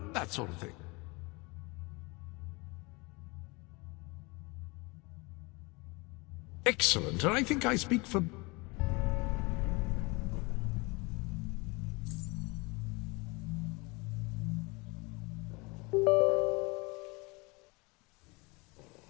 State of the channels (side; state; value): right; quieter; 26.5 dB